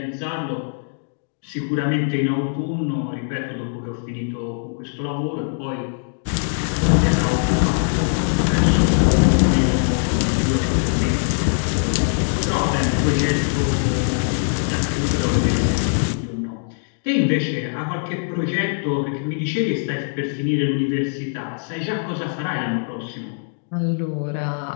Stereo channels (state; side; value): silent; right; digital silence